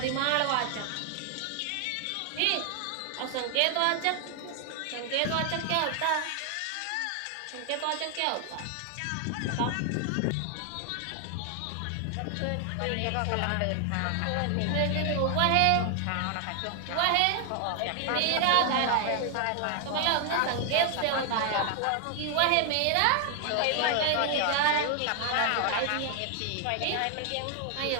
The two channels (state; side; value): different; both; correlation 0.00